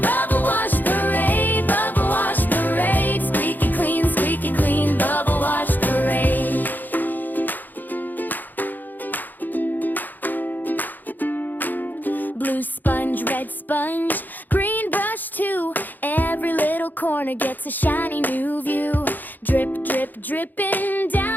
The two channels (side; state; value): right; late; 0.086 ms